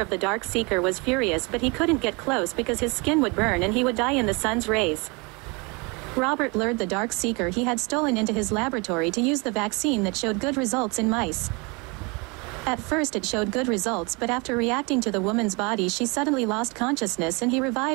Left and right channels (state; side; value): quieter; left; 29.0 dB